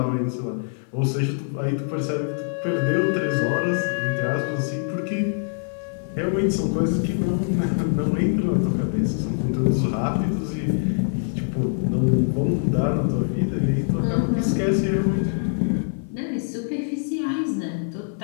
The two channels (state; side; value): silent; right; 56 dB below the other